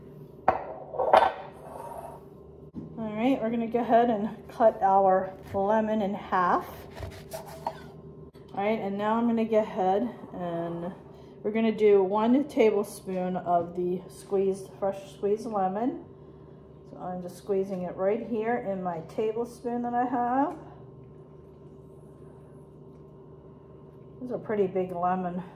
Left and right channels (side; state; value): both; identical; correlation 1.00